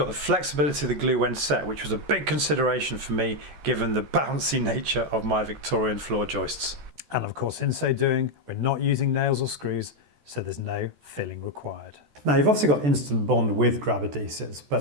the flexibility of the glue when set, which was a big consideration for me given the bouncy nature of my Victorian floor joists. And of course, in so doing, we're not using nails or screws, so there's no filling required. Now, you've obviously got instant bond with grab adhesives,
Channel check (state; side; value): late; left; 14 ms